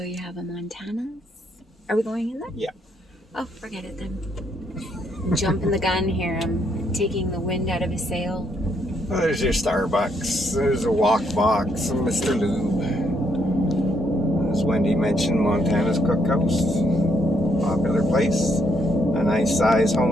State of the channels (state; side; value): normal; both; correlation 0.73